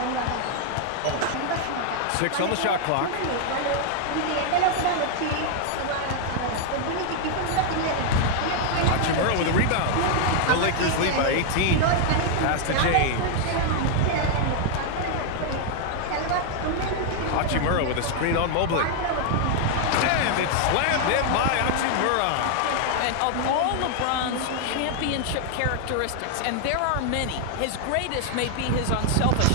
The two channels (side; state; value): both; different; correlation 0.00